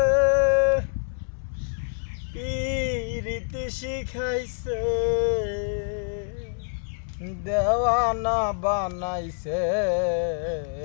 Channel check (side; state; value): right; silent; 61 dB below the other